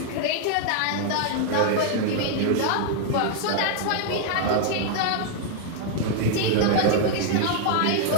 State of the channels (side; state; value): both; different; correlation 0.00